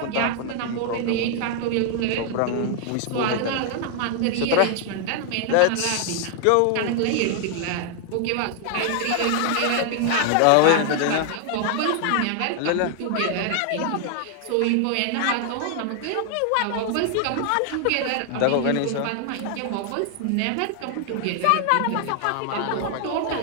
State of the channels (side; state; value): both; different; correlation 0.00